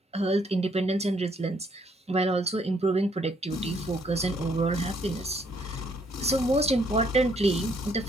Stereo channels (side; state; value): both; normal; correlation 0.68